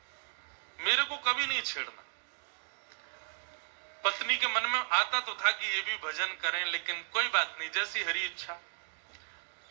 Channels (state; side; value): silent; left; 55 dB below the other